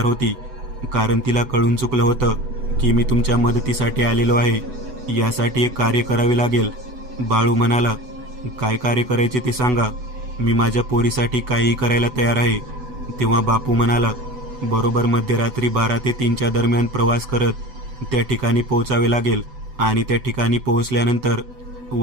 होती, कारण तिला कळून चुकलं होतं की मी तुमच्या मदतीसाठी आलेलो आहे. यासाठी एक कार्य करावे लागेल. बाळू म्हणाला, काय कार्य करायचे ते सांगा, मी माझ्या पोरीसाठी काहीही करायला तयार आहे. तेव्हा बापू म्हणाला, बरोबर मध्यरात्री 12 ते 3च्या दरम्यान प्रवास करत त्या ठिकाणी पोहोचावे लागेल आणि त्या ठिकाणी पोहोचल्यानंतर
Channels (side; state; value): left; late; 8.0 ms